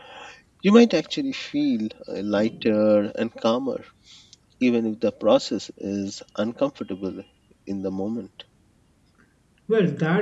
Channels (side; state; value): both; identical; correlation 1.00